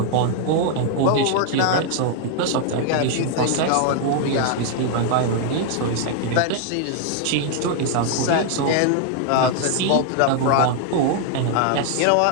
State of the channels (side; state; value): both; different; correlation 0.00